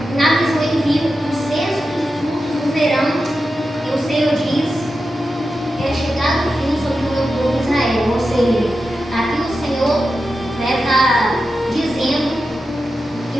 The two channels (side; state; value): both; normal; correlation 0.91